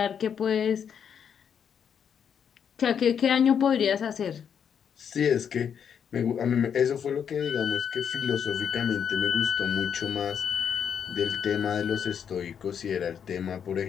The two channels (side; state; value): right; quieter; 7.8 dB